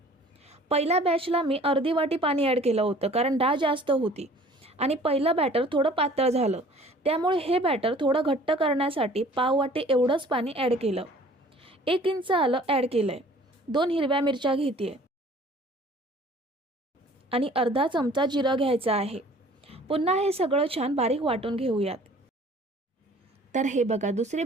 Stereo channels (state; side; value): normal; both; correlation 0.51